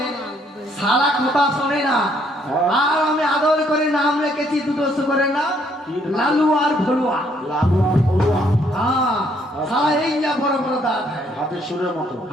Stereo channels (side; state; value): both; normal; correlation 0.68